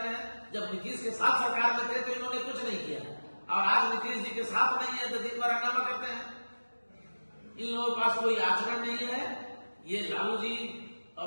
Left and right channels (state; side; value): inverted; both; correlation -1.00